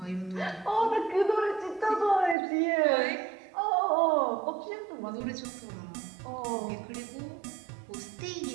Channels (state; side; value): drops out; left; at 2.4 s